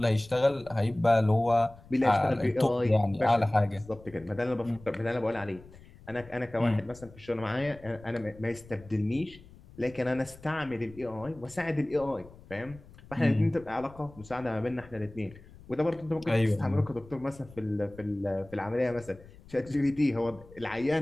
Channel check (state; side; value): noise; left; rumble, 21 dB below the sound